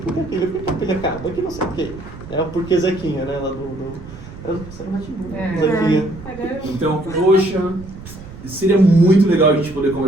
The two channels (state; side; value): noise; right; rumble, 15 dB below the sound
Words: que aquilo? Por que a pilha acaba? Por que não sei o quê? É o porquê Zequinha, né? Lá Zequinha. Então, poxa, seria muito legal a gente poder